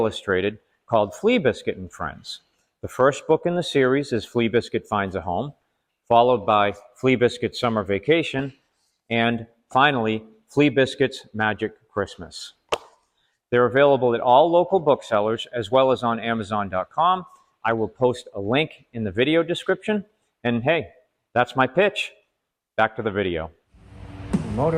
called Flea Biscuit and Friends. The first book in the series is Flea Biscuit Finds a Home, followed by Flea Biscuit Summer Vacation, and finally, Flea Biscuit's Magic Christmas. They're available at all local booksellers as well as on Amazon.com. I will post a link in the video description. And hey, that's my pitch. Back to the video. The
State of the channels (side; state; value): both; identical; correlation 1.00